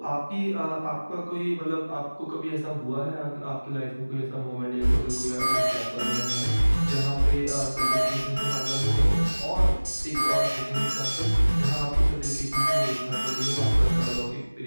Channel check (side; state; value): both; inverted; correlation -1.00